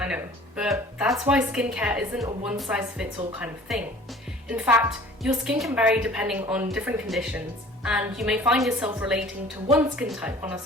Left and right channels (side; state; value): both; normal; correlation 0.48